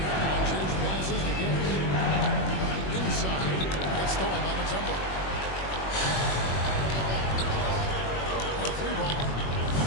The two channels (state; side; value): late; right; 21 ms